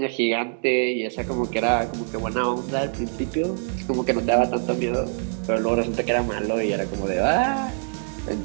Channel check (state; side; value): silent; left; 55 dB below the other